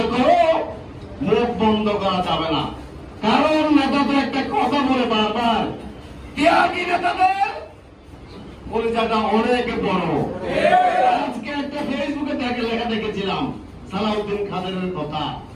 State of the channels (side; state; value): both; identical; correlation 1.00